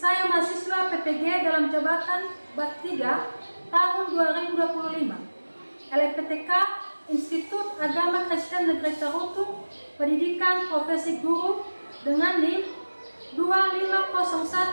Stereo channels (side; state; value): both; inverted; correlation -1.00